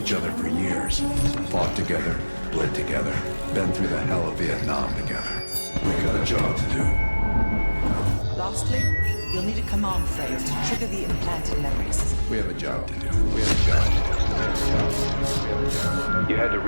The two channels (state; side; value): inverted; both; correlation -1.00